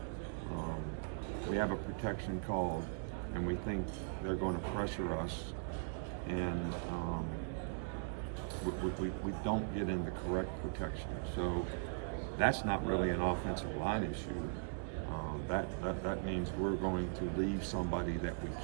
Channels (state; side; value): silent; left; digital silence